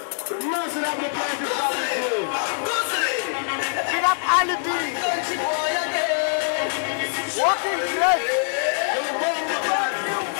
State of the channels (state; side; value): silent; right; digital silence